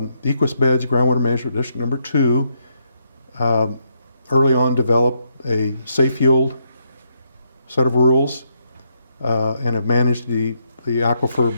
Equus Beds Groundwater Management District number 2, early on developed a safe yield set of rules and have managed the aquifer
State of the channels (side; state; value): both; inverted; correlation -0.77